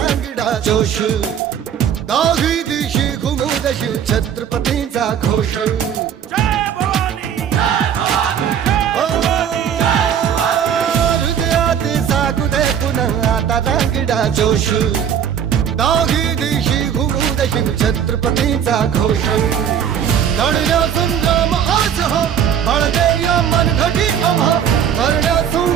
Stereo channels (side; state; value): left; quieter; 8.6 dB